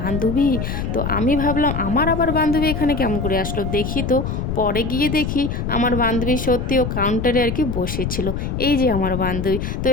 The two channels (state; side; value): noise; left; rumble, 3 dB below the sound